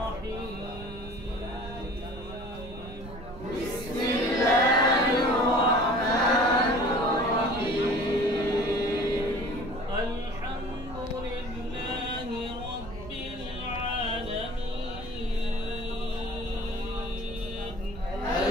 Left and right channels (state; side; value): noise; right; rumble, 13 dB below the sound